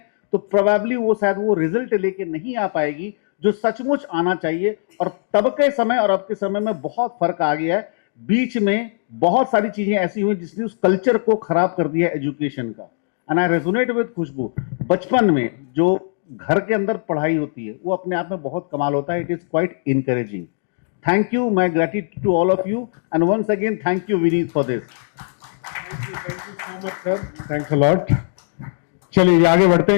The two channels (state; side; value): silent; right; digital silence